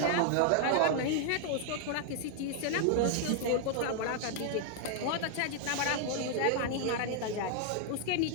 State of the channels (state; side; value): different; both; correlation 0.00